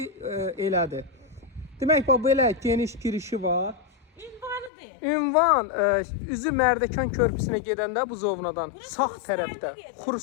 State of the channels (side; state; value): right; drops out; at 4.7 s